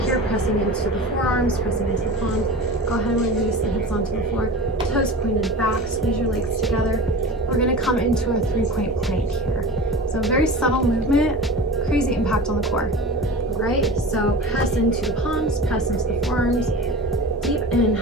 pressing into the forearms, pressing into the palms. Go ahead and release the hips onto the floor. Toes pointed back, squeeze your legs together. We're gonna come into a 3-point plank here. So very subtle movement, crazy impact on the core. All right, so press into the palms, press into the forearms. Deep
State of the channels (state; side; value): normal; both; correlation 0.34